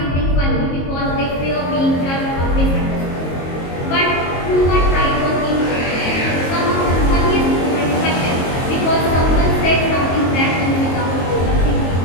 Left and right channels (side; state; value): right; late; 22 ms